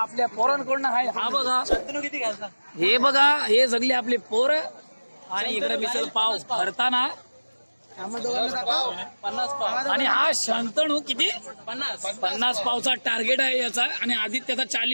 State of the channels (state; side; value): inverted; both; correlation -1.00